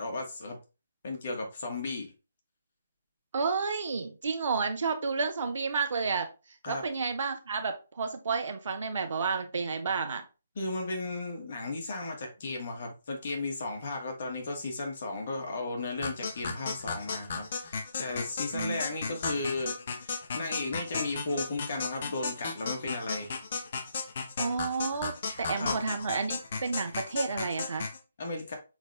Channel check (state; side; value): inverted; both; correlation -0.71